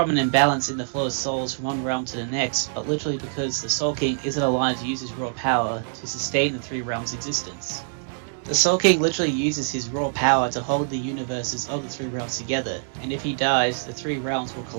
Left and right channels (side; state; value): left; silent; digital silence